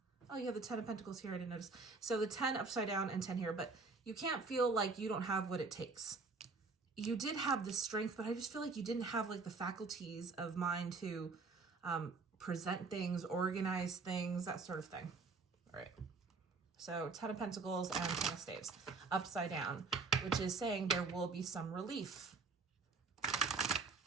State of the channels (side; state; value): left; quieter; 4.3 dB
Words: Oh, you have the 10 of Pentacles here, I didn't notice. So the 10 upside down and 10 here, but you can't feel like you don't have what it takes. You did have the strength, but I just feel like you didn't have like the faculties of mind to present things, organize things, that sort of thing. All right. So 10 of Pentacles and 10 of Staves upside down, which is saying there will be some relief.